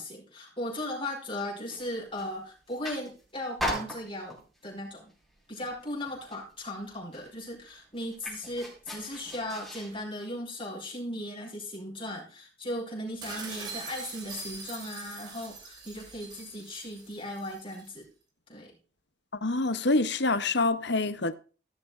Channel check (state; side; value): normal; both; correlation 0.17